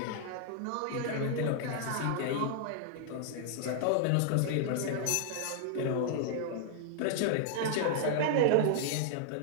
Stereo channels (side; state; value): both; different; correlation -0.01